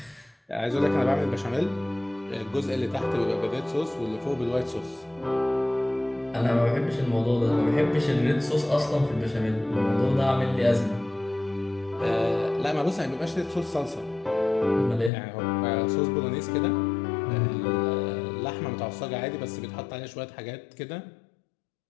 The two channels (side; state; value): right; drops out; at 15.1 s